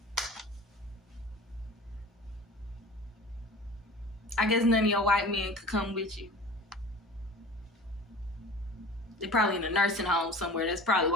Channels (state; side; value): normal; both; correlation 0.40